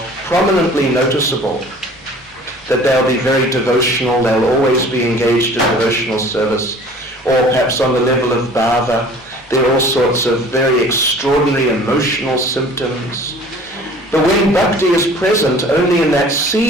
prominently noticeable. That they'll be very devotional, they'll always be engaged in devotional service, or perhaps on the level of bhava, there are all sorts of very extraordinary emotional symptoms. But when bhakti is present only in that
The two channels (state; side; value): normal; both; correlation 0.48